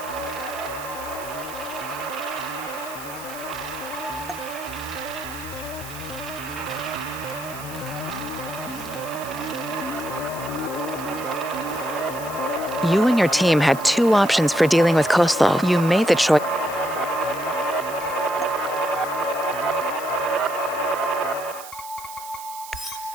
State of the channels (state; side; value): noise; right; hiss, 14 dB below the sound